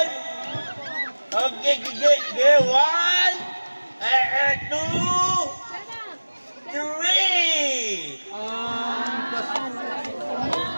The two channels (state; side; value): inverted; both; correlation -1.00